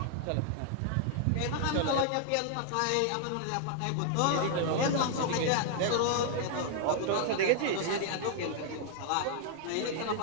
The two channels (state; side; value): different; both; correlation 0.00